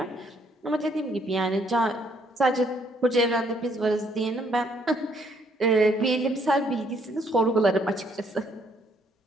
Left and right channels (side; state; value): both; normal; correlation 0.68